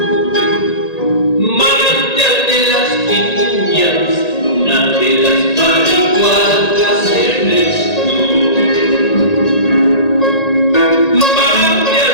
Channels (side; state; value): right; late; 1.8 ms